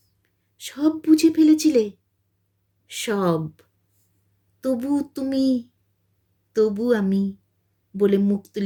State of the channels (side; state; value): both; identical; correlation 1.00